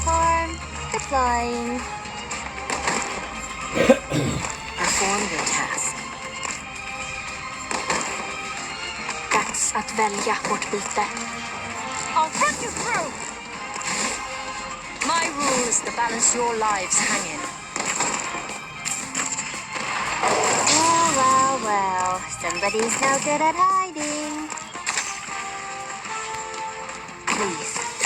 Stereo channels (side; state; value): both; identical; correlation 1.00